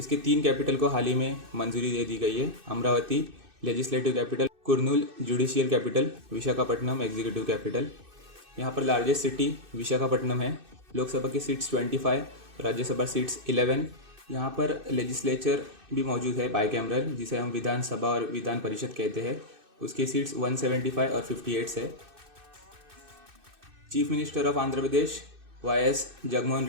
3 कैपिटल को हाल ही में मंजूरी दे दी गई है। Amravati legislative capital, Kurnool judicial capital, Visakhapatnam executive capital. यहाँ पर लार्जेस्ट सिटी विशाखापट्टनम है। लोकसभा की सीट्स 25, राज्यसभा सीट्स 11। यहाँ पर लेजिस्लेचर भी मौजूद है बाईकैमरल, जिसे हम विधानसभा और विधान परिषद कहते हैं। उसकी सीट्स 175 और 58 है। Chief minister of Andhra Pradesh YS. Jaganmohan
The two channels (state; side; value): late; left; 2.6 ms